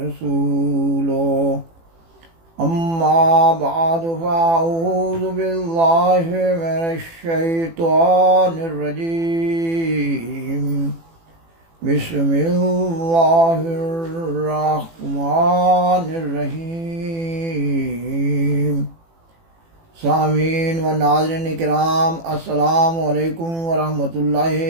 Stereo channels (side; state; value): left; late; 18 ms